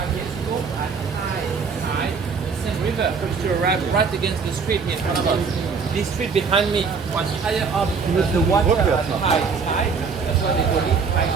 years ago, at high tide, the Seine River used to arrive right against the street here in front of us. This street behind me was higher up than the water at high tide. That's why they call it High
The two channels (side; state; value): left; quieter; 5.4 dB